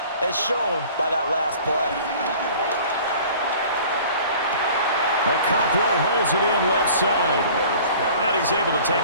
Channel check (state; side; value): inverted; both; correlation -0.47